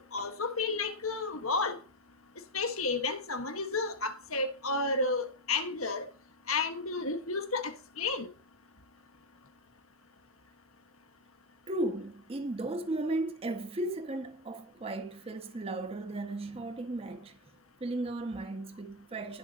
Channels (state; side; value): normal; both; correlation 0.04